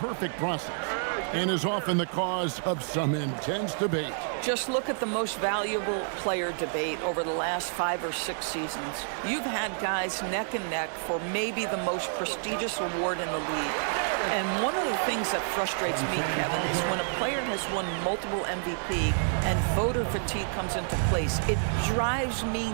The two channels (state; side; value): silent; left; 59 dB below the other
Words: process and is often the cause of some intense debate. Just look at the most valuable player debate over the last 5 or 6 seasons. You've had guys neck and neck for maybe the most prestigious award in the league. And one of the things that frustrates me, Kevin, is when a player has won multiple MVP and voter fatigue comes into place. It drives me